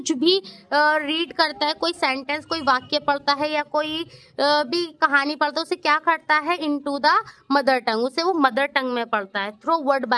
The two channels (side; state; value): both; identical; correlation 1.00